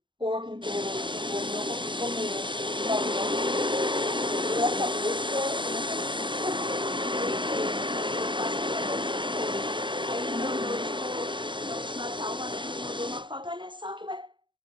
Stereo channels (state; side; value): late; left; 0.23 ms